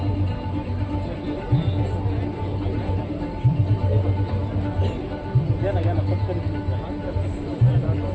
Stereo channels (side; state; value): both; identical; correlation 1.00